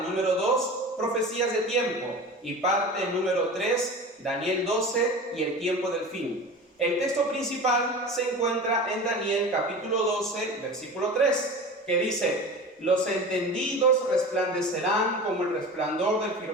2, profecías de tiempo. Y parte número 3, Daniel 12 y el tiempo del fin. El texto principal se encuentra en Daniel capítulo 12, versículo 3, que dice: los entendidos resplandecerán como el resplandor del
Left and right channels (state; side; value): normal; both; correlation 0.34